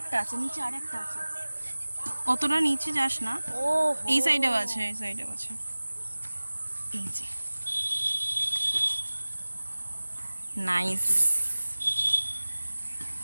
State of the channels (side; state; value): both; inverted; correlation -1.00